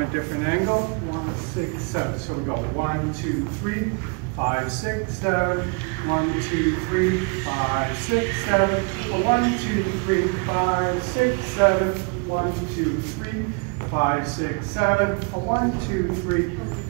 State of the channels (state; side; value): quieter; left; 32.8 dB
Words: different angle. 1, 6, 7. So we go 1, 2, 3, 5, 6, 7. 1, 2, 3, 5, 6, 7. 1, 2, 3, 5, 6, 7. 1, 2, 3, 5, 6, 7. 1, 2, 3,